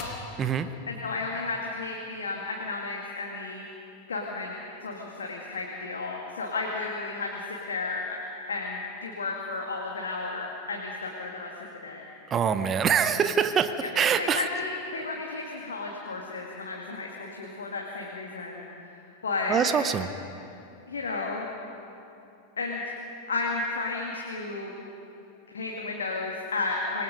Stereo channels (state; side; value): normal; both; correlation 0.11